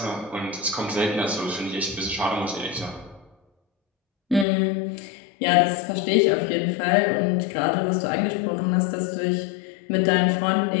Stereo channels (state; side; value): drops out; right; at 4.5 s